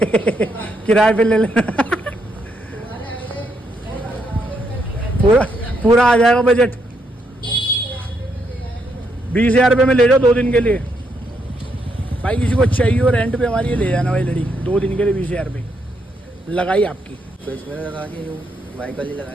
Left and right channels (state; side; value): normal; both; correlation 0.77